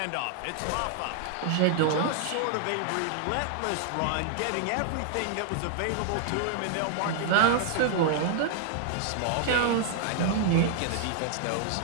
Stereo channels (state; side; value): different; both; correlation 0.00